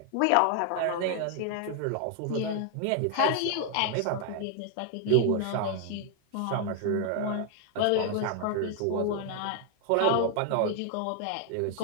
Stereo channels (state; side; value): different; both; correlation 0.00